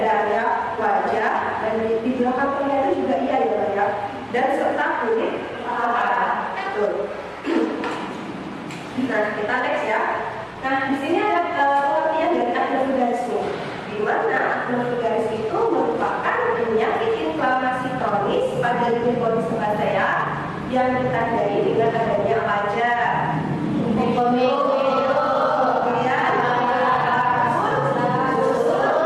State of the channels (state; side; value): identical; both; correlation 1.00